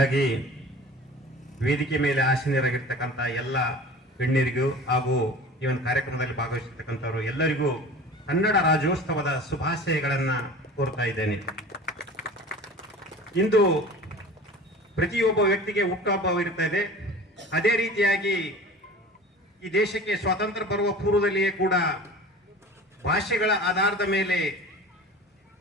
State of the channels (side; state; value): both; normal; correlation 0.39